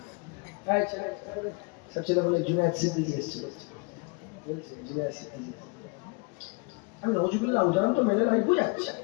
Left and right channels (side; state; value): right; quieter; 30.0 dB